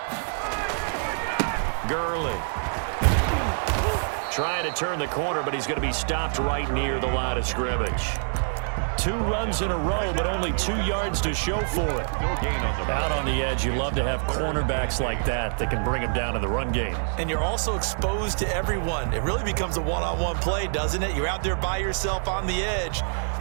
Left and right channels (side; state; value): left; silent; 57 dB below the other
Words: Gurley trying to turn the corner, but he's going to be stopped right near the line of scrimmage. 2 runs in a row, but only 2 yards to show for it. Out on the edge, you love to have cornerbacks like that that can bring them down in the run game. And you're also exposed to everyone. It really becomes a one-on-one play, doesn't it? You're out there by yourself on the edge.